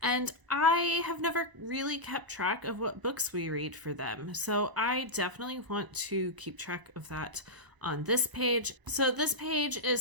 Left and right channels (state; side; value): late; left; 1.0 ms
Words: and I have never really kept track of what books we read for them. So I definitely want to keep track of that on this page. So this page